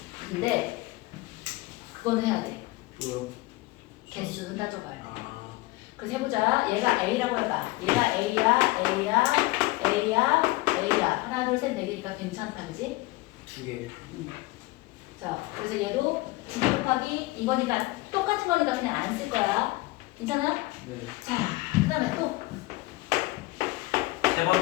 근데 그거는 해야 돼. 뭐야? 개수 따져봐요. 아, 그래서 해보자. 얘가 A라고 해봐. 얘가 A야. 하나, 둘, 셋, 네 개니까 괜찮다, 그지? 2개. 자, 그래서 얘도 9 곱하기 이거니까 똑같은 거니까 그냥 안 쓸 거야. 괜찮아? 네. 자, 그 다음에 또, 세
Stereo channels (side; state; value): right; quieter; 21.0 dB